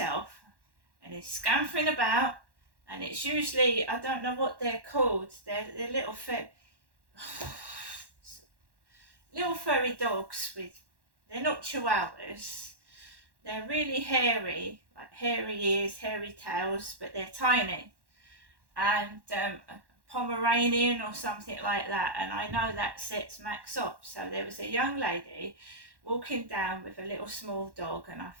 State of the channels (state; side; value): late; left; 1.1 ms